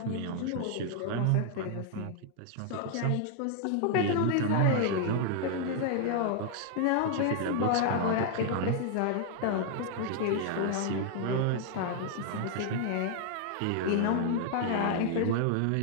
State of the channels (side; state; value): both; different; correlation 0.00